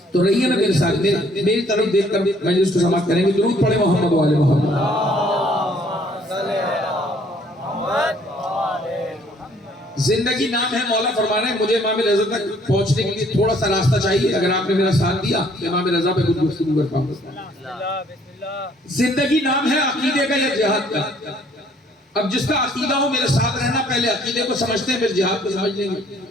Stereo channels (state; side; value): normal; both; correlation 0.61